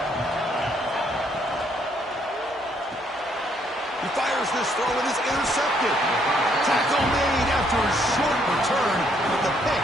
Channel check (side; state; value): both; normal; correlation 0.69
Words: He fires this throw and is intercepted. Tackle made after a short return, but the pick